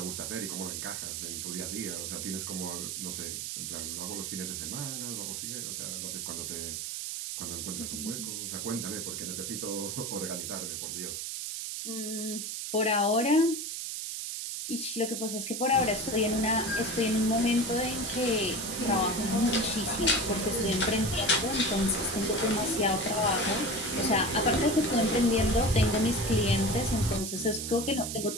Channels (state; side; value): noise; right; hiss, 4 dB below the sound